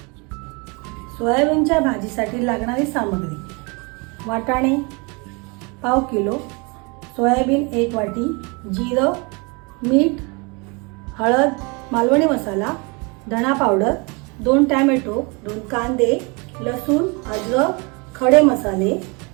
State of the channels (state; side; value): quieter; left; 30.1 dB